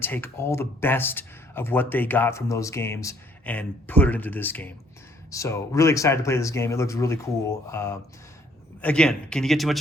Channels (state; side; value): normal; both; correlation 0.63